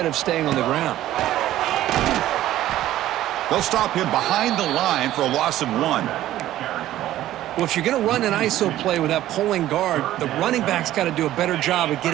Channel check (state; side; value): quieter; left; 13.8 dB